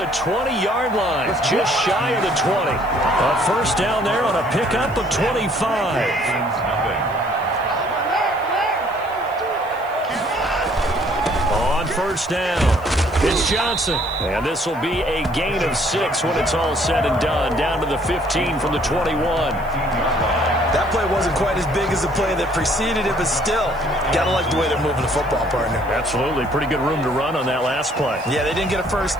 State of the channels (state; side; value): noise; left; hiss, 26 dB below the sound